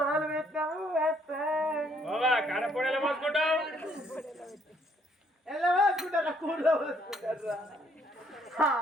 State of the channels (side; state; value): both; normal; correlation 0.67